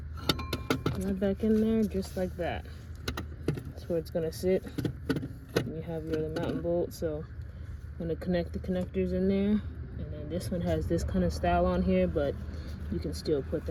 right back in there just like that. That's where it's gonna sit. And you have your other mountain bolt, so I'm gonna connect the connectors in there. And then this one has this kind of style on here, but you can still put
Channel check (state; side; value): identical; both; correlation 1.00